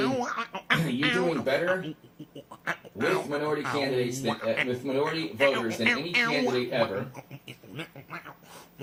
you're doing better with minority candidates than with minority voters than any candidate ever.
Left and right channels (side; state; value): both; identical; correlation 1.00